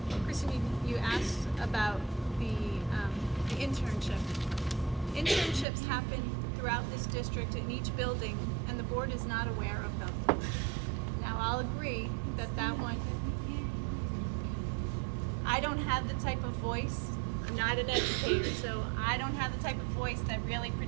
Kristen, you asked about the internship. Internships happen throughout this district in each building, and the board is not aware of them. Now, I'll agree that that one, I don't have the type of voice, I'm not an educator, so I don't have the type of voice that really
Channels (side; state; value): left; drops out; at 5.7 s